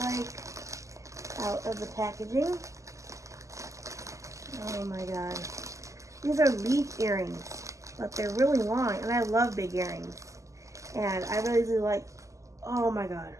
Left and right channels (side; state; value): left; late; 0.16 ms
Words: out of the packaging. Oh my god. These are leaf earrings, but they're really long, and I love big earrings. And I really do like, oh my god.